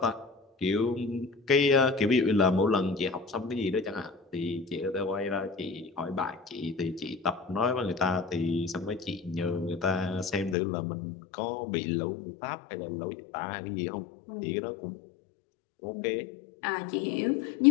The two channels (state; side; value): drops out; right; at 10.6 s